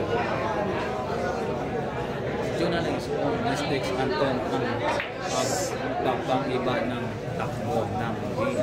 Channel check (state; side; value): identical; both; correlation 1.00